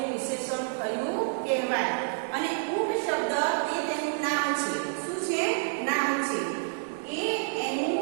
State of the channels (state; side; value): silent; left; 59 dB below the other